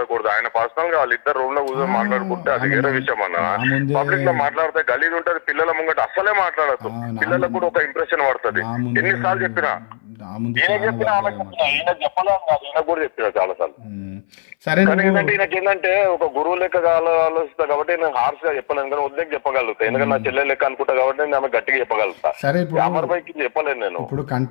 ఆయన పర్సనల్ గా వాళ్ళిద్దరు రూమ్ లో కూర్చొని మాట్లాడుకుంటే అది వేరే విషయం అన్న. పబ్లిక్ లో మాట్లాడితే గలీజ్ ఉంటది. పిల్లల ముంగట అస్సలే మాట్లాడద్దు. పిల్లలకు కూడా ఒక ఇంప్రెషన్ పడుతుంది. ఎన్నిసార్లు చెప్పినా, ఈయన చెప్పినా ఆమె చెప్పినా, ఈయన చెప్పలేదు కాదు, ఈయన కూడా చెప్పినా చాలా సార్లు. సరే కానీ ఏంటంటే ఈయనకి ఏంటంటే ఒక గురువు లెక్క ఆలోచిస్తా కాబట్టి నేను హార్ష్ గా చెప్పలేను, కానీ వద్దని చెప్పగలుగుతా. ఎందుకంటే నా చెల్లె లెక్క అనుకుంటా కాబట్టి నేను ఆమె గట్టిగా చెప్పగలుగుతా. సరే, ఇప్పుడు అమర్ పైకి చెప్పలేను నేను. ఇప్పుడు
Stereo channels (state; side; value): silent; right; 61 dB below the other